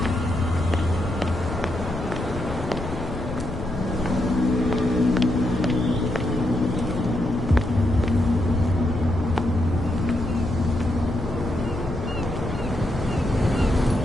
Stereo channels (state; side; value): noise; left; rumble, 8 dB below the sound